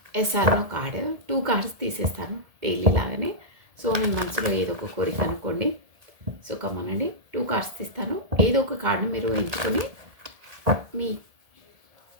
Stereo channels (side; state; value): left; late; 1.7 ms